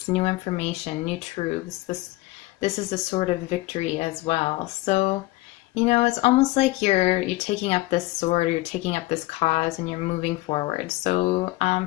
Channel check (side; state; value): right; quieter; 19.9 dB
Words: new information, new truths. This is a sort of victory as well. So, it's almost like you're taking up this sword, or you're taking up this cause, and you're moving forward. So,